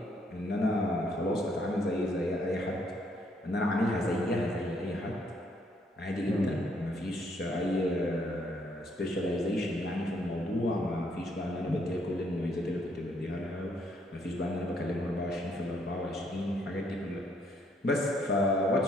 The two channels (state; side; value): normal; both; correlation 0.70